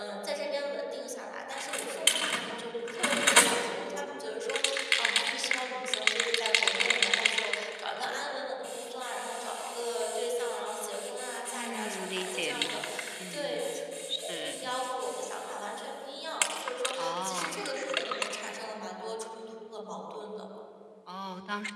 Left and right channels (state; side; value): identical; both; correlation 1.00